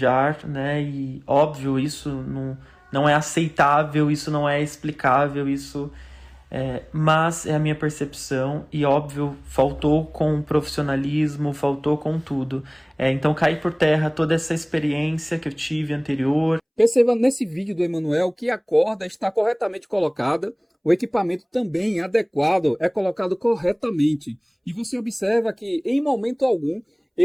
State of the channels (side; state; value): both; identical; correlation 1.00